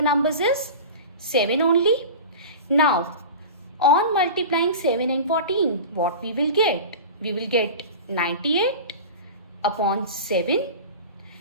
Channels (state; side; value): inverted; both; correlation -0.33